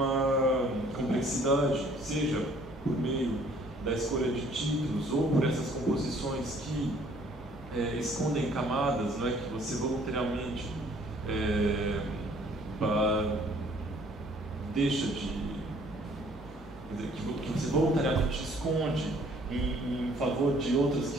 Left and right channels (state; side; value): normal; both; correlation 0.59